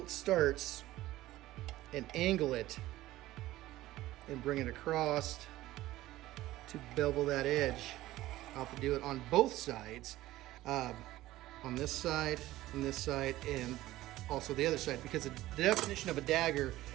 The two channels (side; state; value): left; quieter; 16.1 dB